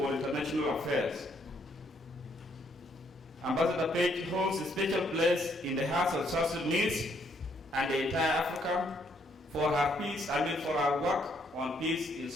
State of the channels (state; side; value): normal; both; correlation 0.71